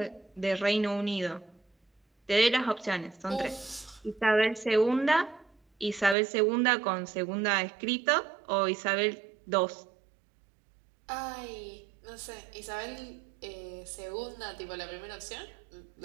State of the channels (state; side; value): drops out; left; at 6.2 s